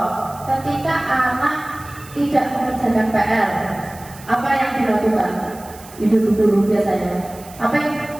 Ketika anak tidak mengerjakan PR, apa yang dilakukan ibu guru biasanya? Apa yang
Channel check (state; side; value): noise; right; hiss, 20 dB below the sound